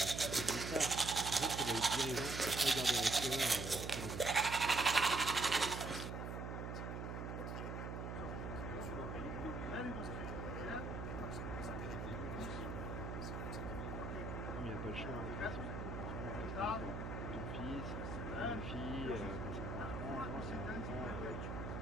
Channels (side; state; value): right; noise; hum, 5 dB below the sound